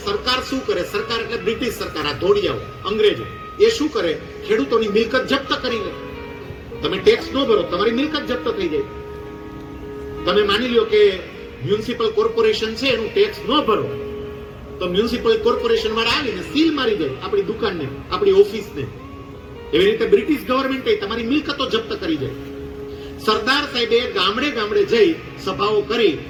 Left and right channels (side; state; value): both; identical; correlation 1.00